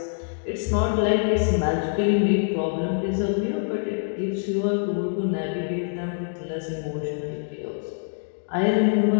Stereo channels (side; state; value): right; silent; digital silence